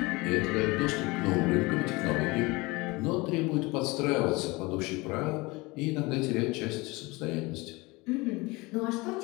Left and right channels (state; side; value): quieter; right; 23.7 dB